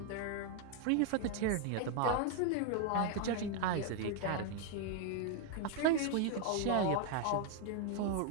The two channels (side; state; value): both; different; correlation 0.00